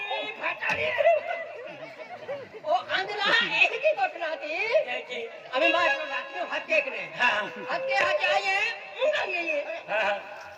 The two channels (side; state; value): both; identical; correlation 1.00